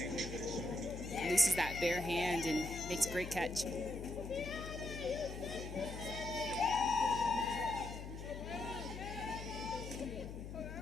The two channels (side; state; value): left; noise; hum, 9 dB below the sound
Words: Looses that bare hand and makes a great catch.